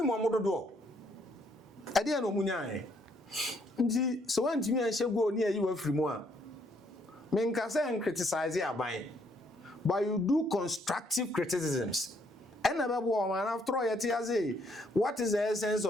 mo amododo. Ade na omu nyae. Nti so wantimi anhye go ni ayi wa firi mu a. Men ka say en criticize aban. But you do constructive criticisms. And after all, what is the essence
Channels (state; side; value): normal; both; correlation 0.69